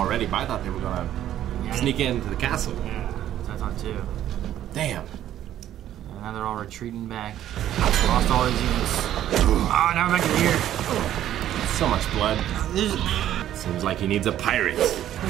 but I thought they were gonna sneak into the castle. Yeah, that's what I thought too. Damn. And now they're all retreating back. Lost all his units. Oh, now we're back to here. So much blood. This Seems like he needs a pirate.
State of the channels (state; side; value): quieter; left; 11.9 dB